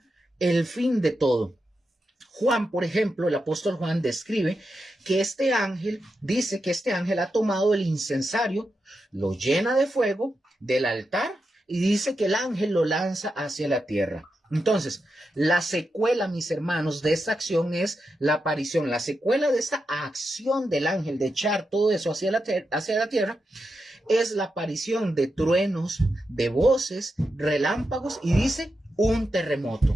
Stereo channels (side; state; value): both; normal; correlation 0.87